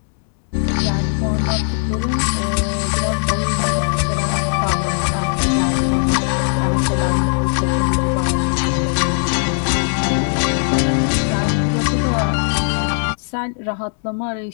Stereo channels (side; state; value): right; silent; digital silence